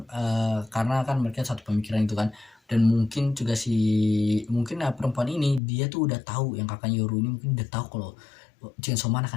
karena kan mereka satu pemikiran itu kan. Dan mungkin juga mungkin perempuan ini dia tuh udah tahu, yang kakaknya Yoru ini mungkin udah tahu kalau Chainsaw Man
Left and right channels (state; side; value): drops out; right; at 5.6 s